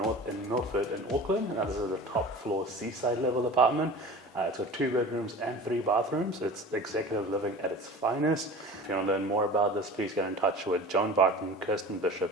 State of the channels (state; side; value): normal; both; correlation 0.37